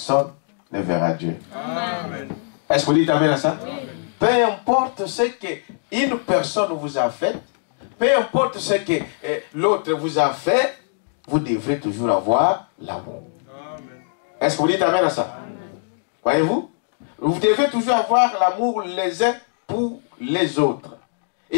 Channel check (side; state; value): right; silent; digital silence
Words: ne verra Dieu. Amen. Est-ce que vous dites amen à ça? Amen. Peu importe ce qu'une personne vous a fait, peu importe ce que l'autre vous a fait, vous devrez toujours avoir l'amour. Est-ce que vous dites amen à ça? Voyez-vous? Vous devez toujours avoir l'amour les uns pour les autres.